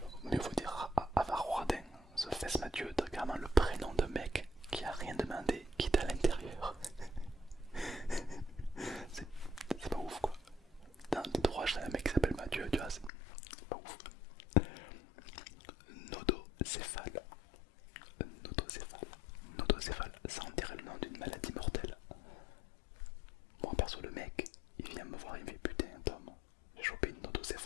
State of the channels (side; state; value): right; drops out; at 13.1 s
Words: Mais il faut dire avare ou radin. Ce Fess Mathieu, t'as carrément le prénom de mec qui a rien demandé, qui est à l'intérieur. C'est pas ouf quoi. Dans tes droits, j'ai un mec qui s'appelle Mathieu, tu vois, c'est pas ouf. Nodocéphale. Nodocéphale. Nodocéphale, ça en dirait le nom d'une maladie mortelle. Moi perso, le mec, il vient me voir, il me fait putain Tom, j'ai chopé une